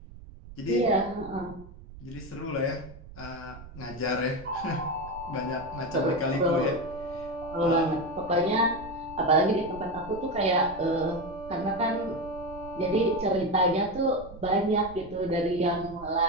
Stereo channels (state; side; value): noise; right; rumble, 16 dB below the sound